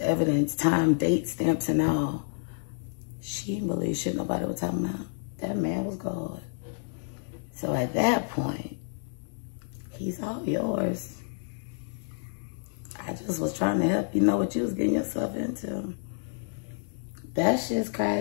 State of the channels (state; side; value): silent; right; 58 dB below the other